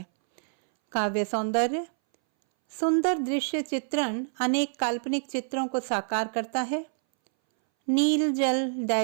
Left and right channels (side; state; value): left; silent; 60 dB below the other